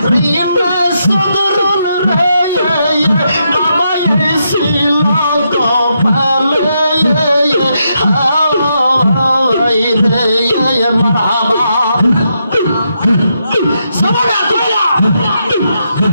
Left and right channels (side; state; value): both; inverted; correlation -0.81